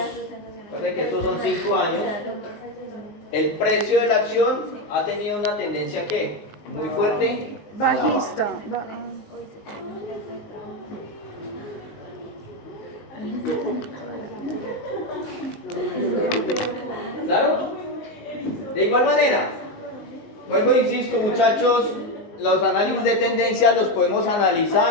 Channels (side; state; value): right; late; 19 ms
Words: recuerden que estos son 5 años, el precio de la acción ha tenido una tendencia que muy fuerte. Bajista. ¿Claro? De igual manera, vuelvo e insisto, muchachos, los análisis de tendencia los podemos